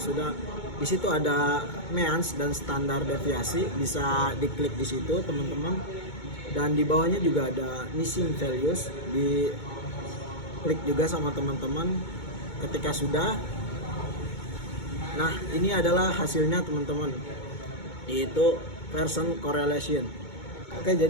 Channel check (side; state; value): right; late; 2.2 ms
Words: di situ ada means dan standar deviasi, bisa diklik di situ teman-teman, dan di bawahnya juga ada missing values, di klik juga sama teman-teman. Ketika sudah, nah ini adalah hasilnya teman-teman, yaitu person correlation. Oke,